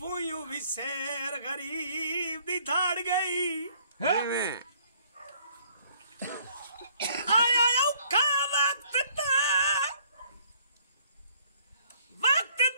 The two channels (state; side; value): inverted; both; correlation -0.61